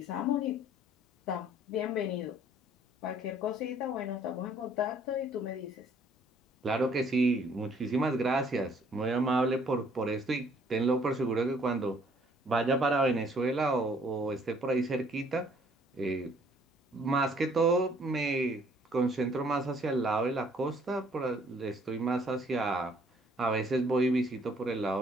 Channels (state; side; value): normal; both; correlation 0.61